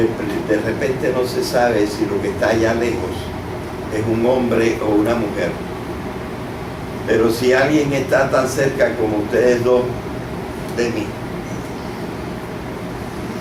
repente no se sabe si lo que está allá lejos es un hombre o una mujer. Pero si alguien está tan cerca como ustedes dos de mí,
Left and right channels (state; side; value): identical; both; correlation 1.00